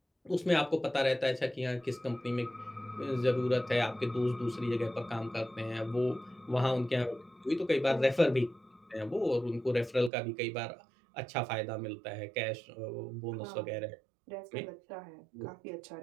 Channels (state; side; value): drops out; left; at 10.1 s